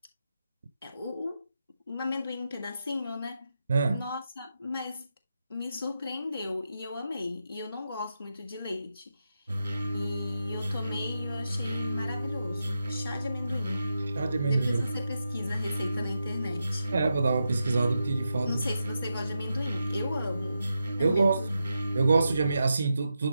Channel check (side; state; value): both; inverted; correlation -0.87